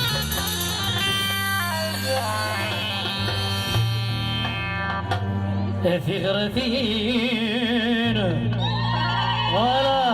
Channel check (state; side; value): identical; both; correlation 1.00